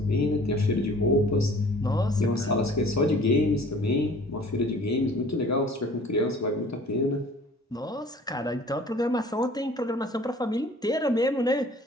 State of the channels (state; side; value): normal; both; correlation 0.50